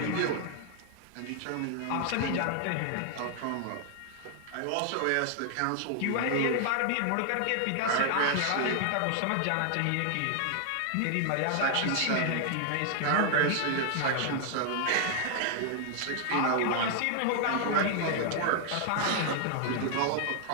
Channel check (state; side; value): different; both; correlation 0.00